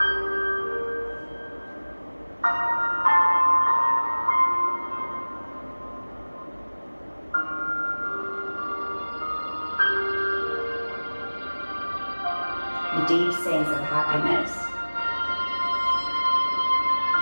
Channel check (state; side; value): inverted; both; correlation -1.00